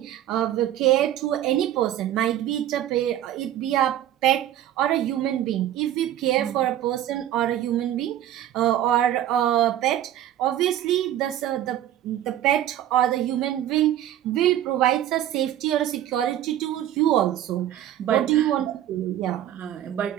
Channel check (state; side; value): quieter; left; 12.1 dB